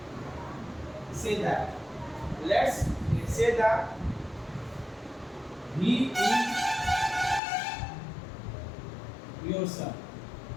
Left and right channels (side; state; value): right; drops out; at 7.4 s